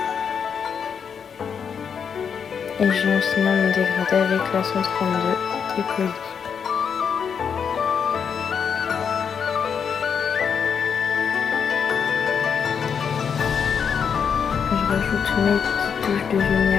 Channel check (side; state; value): right; quieter; 6.9 dB